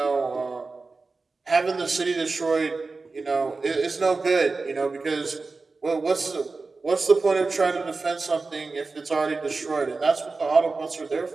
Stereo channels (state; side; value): quieter; left; 3.9 dB